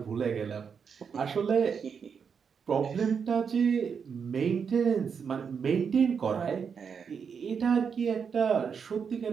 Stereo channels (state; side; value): quieter; left; 6.5 dB